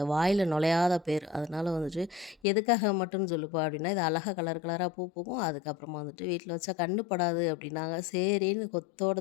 வாயில நுழையாத பேர். அதனால வந்துட்டு எதுக்காக மட்டும் சொல்லுப்பா அப்படின்னா, இது அழகா கலர் கலரா பூ பூக்கும். அதுக்கப்புறமா வந்துட்டு வீட்ல வச்சா கண்ணு படாது அப்படின்னாங்க. சரின்னு கொத்தோட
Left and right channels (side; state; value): right; drops out; at 2.4 s